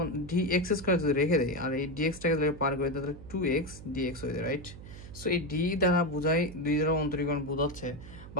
dx স্কয়ার যদি রেখে দেই আর এই dxটাকে যদি পার করে তাহলে 2x dx হয়ে যায়, রাইট। সো এই d দ্বারা বোঝায় 2 দ্বারা অন্তরীকরণ বোঝাচ্ছে,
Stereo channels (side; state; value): right; noise; hum, 15 dB below the sound